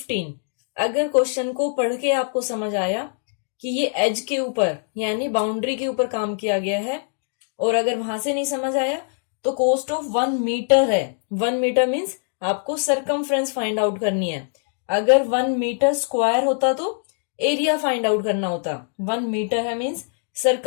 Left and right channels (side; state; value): right; silent; digital silence